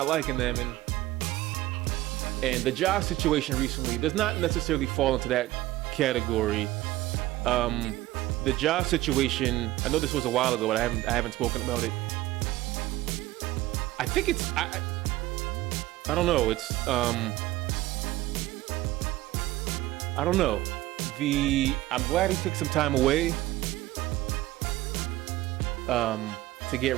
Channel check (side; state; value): left; quieter; 16.8 dB